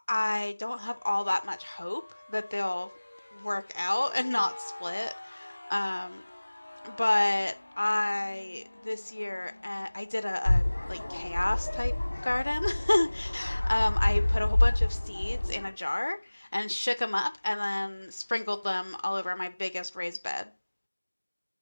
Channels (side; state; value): both; inverted; correlation -1.00